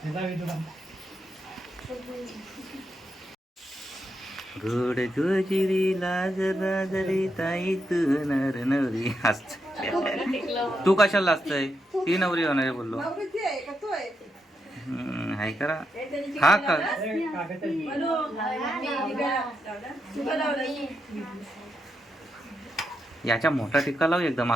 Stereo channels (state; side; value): normal; both; correlation 0.83